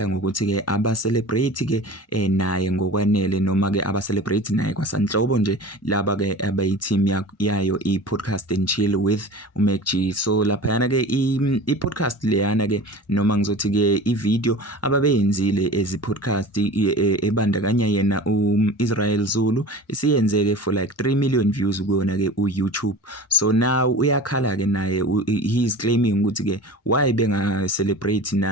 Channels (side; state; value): both; normal; correlation 0.36